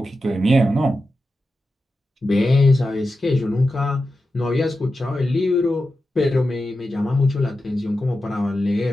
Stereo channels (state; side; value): normal; both; correlation 0.91